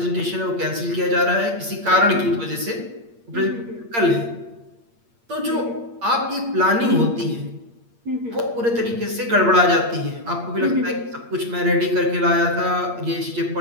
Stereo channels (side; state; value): left; late; 8.6 ms